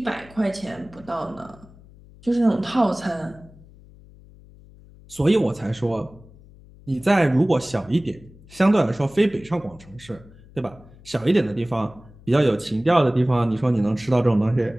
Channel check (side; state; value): left; noise; hum, 23 dB below the sound